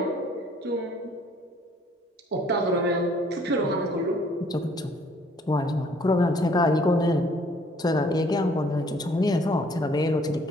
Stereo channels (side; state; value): both; normal; correlation 0.60